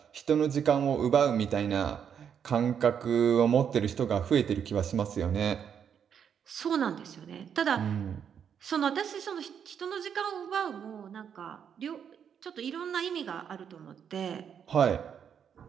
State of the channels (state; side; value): quieter; left; 7.9 dB